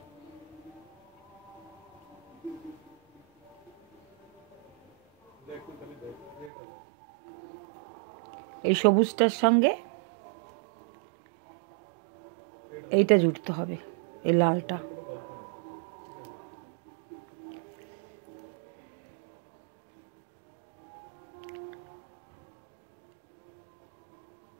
এই সবুজটার সঙ্গে এইটা জুড়তে হবে, এই লালটা।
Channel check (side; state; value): left; drops out; at 6.5 s